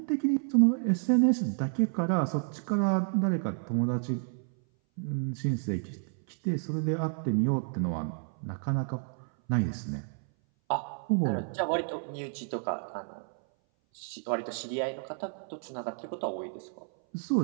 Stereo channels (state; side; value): silent; left; 57 dB below the other